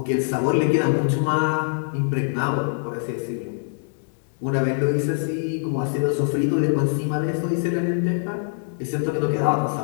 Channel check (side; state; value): right; silent; 63 dB below the other